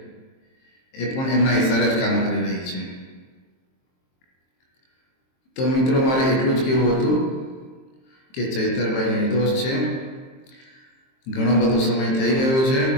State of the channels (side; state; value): right; late; 23 ms